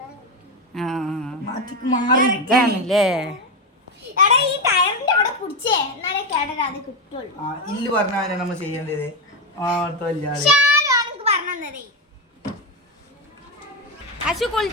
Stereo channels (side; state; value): both; normal; correlation 0.12